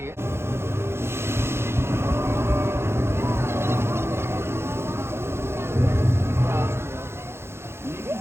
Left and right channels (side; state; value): left; late; 0.12 ms